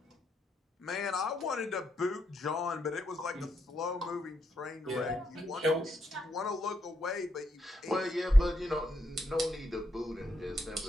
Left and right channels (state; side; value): normal; both; correlation 0.79